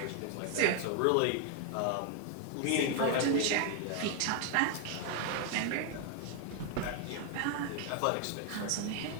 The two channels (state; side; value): different; both; correlation 0.01